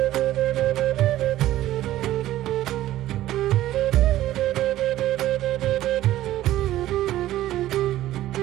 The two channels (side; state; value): left; quieter; 14.3 dB